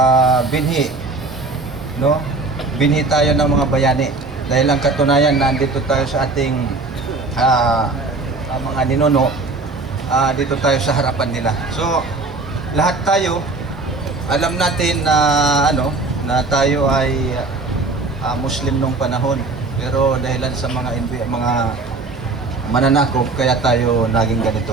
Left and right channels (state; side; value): quieter; left; 3.6 dB